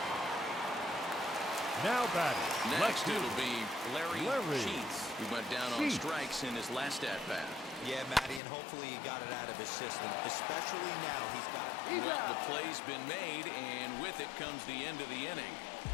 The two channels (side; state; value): right; drops out; at 8.4 s